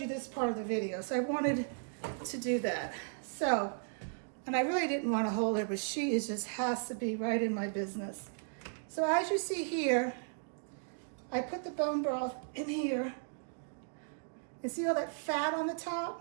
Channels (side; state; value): left; silent; digital silence